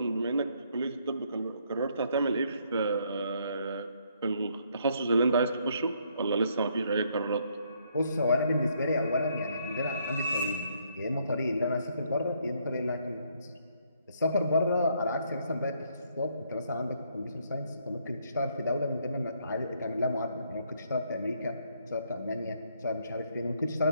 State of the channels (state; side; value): inverted; both; correlation -0.70